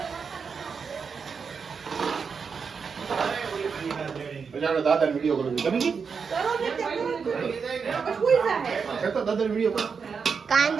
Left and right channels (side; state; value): left; quieter; 5.8 dB